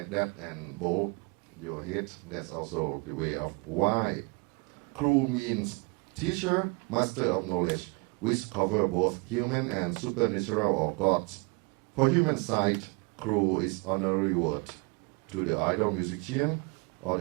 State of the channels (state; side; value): quieter; left; 30.5 dB